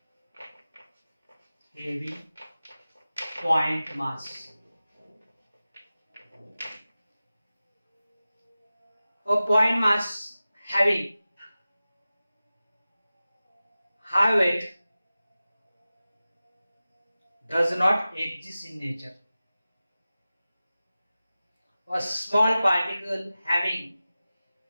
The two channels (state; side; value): inverted; both; correlation -0.96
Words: Heavy point mass. A point mass having high weight does not exist in nature. A small particle having